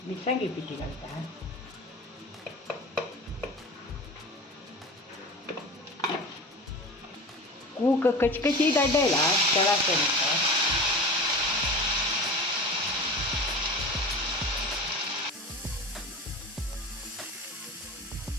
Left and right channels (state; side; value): normal; both; correlation 0.33